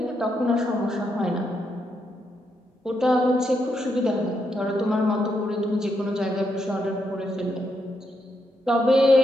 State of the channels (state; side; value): normal; both; correlation 0.80